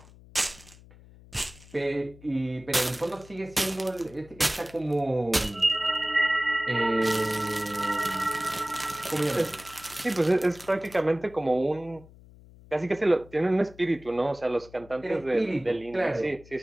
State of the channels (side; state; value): left; noise; hum, 22 dB below the sound